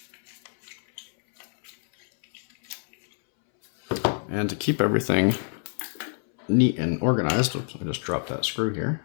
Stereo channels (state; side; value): silent; right; 60 dB below the other